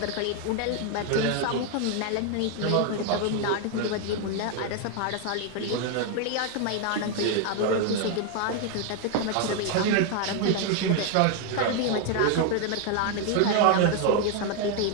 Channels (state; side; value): different; both; correlation 0.01